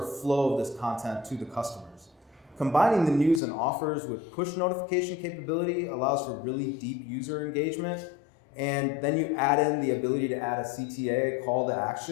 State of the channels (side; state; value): right; drops out; at 3.4 s